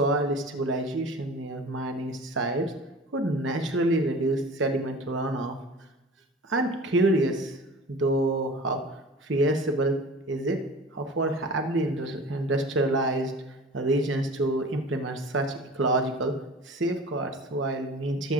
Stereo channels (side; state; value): both; normal; correlation 0.39